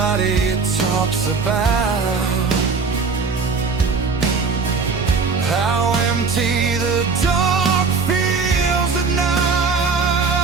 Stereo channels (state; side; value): quieter; left; 4.8 dB